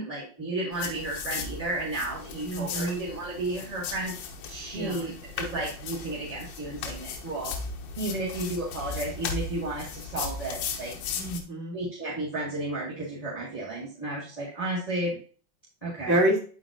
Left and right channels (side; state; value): right; late; 5.5 ms